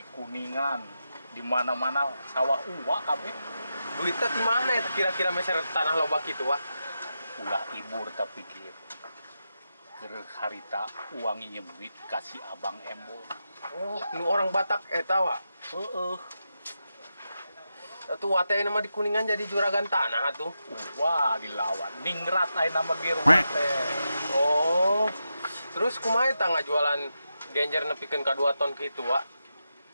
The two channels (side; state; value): both; inverted; correlation -0.88